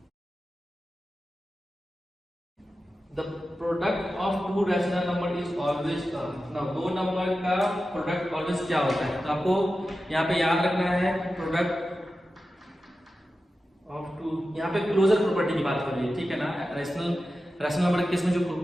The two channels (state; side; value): normal; both; correlation 0.93